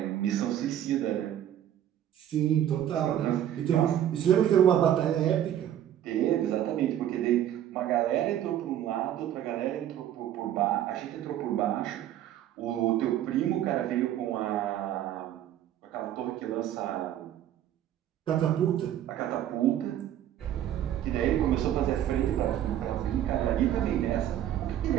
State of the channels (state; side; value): quieter; left; 11.3 dB